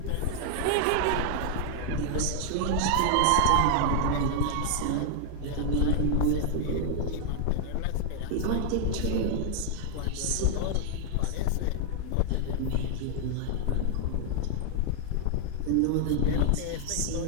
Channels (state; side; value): different; both; correlation -0.01